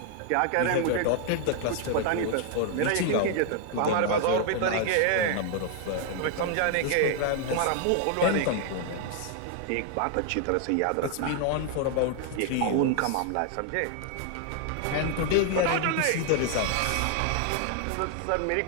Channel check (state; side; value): different; both; correlation 0.00